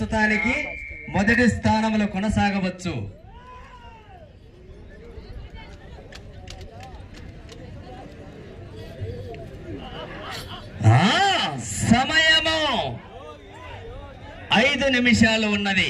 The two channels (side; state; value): both; identical; correlation 1.00